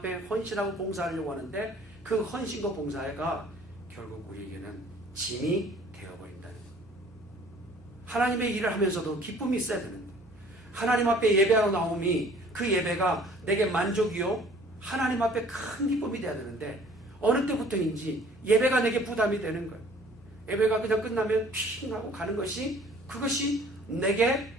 헌신하고 봉사하려고 하는데 그 헌신과 봉사가 결국 우리에게는 짐이 되어버린다는 거예요. 하나님의 일을 하면서도 기쁨이 있어야 되는데 하나님 앞에 예배하러 나옴이 그 예배가 내게 만족이요 하나님 앞에 큰 기쁨이 돼야 되는데 어느 때부터인지 예배가 내게 부담이 되는 거예요. 예배가 그냥 끝나면 핑 하고 가는 것이 그것이 내게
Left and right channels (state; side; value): normal; both; correlation 0.53